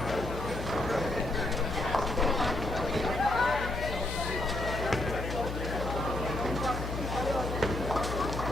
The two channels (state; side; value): noise; left; hum, 6 dB below the sound